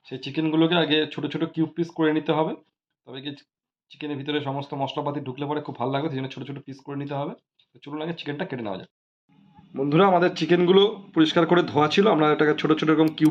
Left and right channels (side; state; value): both; identical; correlation 1.00